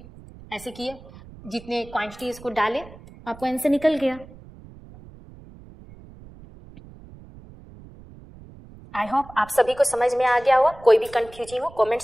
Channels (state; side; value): noise; right; rumble, 20 dB below the sound